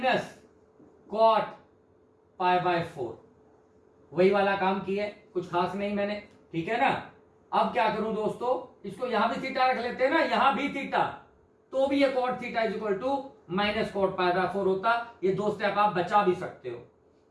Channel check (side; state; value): both; identical; correlation 1.00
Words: cot pi by 4। वही वाला काम किया, कुछ खास नहीं मैंने, ठीक है ना। अब क्या करूं दोस्तों, इसको यहां भी थीटा रख लेते हैं ना, यहां भी थीटा, तो भी ये cot theta is equal to minus cot pi by 4 होता। ये 2 स्टेप आप बचा भी सकते हो।